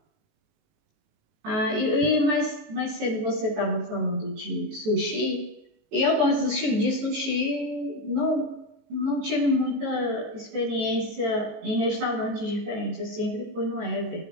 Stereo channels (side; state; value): left; late; 19 ms